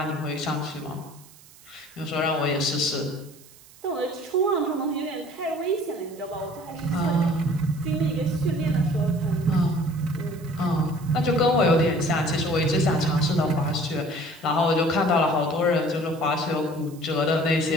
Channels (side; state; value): right; noise; hiss, 24 dB below the sound